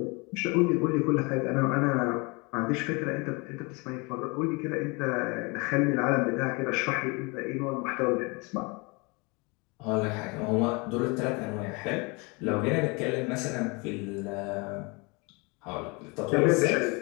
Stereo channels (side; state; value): right; quieter; 28.6 dB